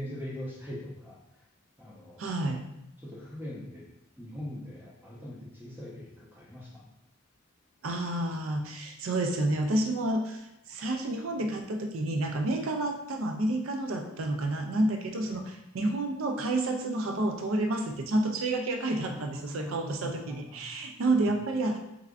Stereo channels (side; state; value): both; normal; correlation 0.63